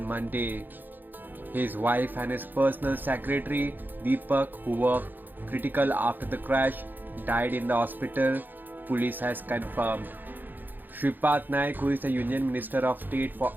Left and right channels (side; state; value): left; late; 0.089 ms